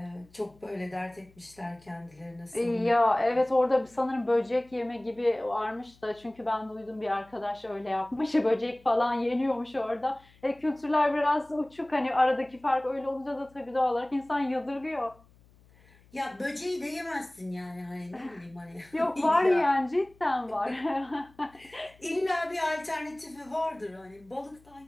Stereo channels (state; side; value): noise; left; hum, 28 dB below the sound